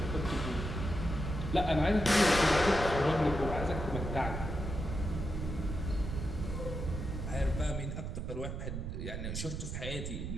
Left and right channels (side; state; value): right; noise; rumble, 4 dB below the sound